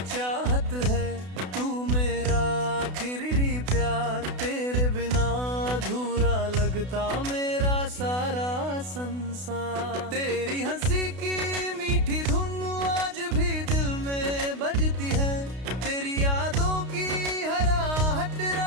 चाहत है, तू मेरा आखिरी प्यार। तेरे बिना अधूरा लगता मेरा सारा संसार। तेरी हंसी की मीठी धुन आज भी दिल में बजती है। तेरी यादों की हर आहट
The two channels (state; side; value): late; left; 32 ms